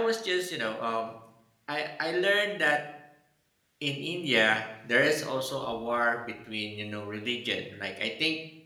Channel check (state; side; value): identical; both; correlation 1.00